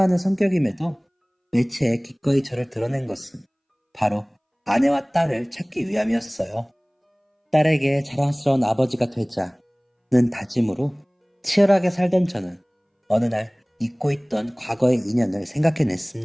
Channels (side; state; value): both; identical; correlation 1.00